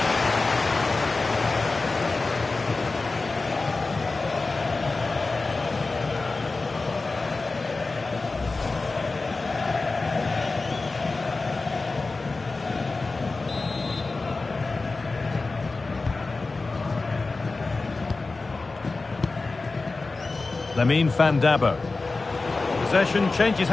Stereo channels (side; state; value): right; quieter; 3.7 dB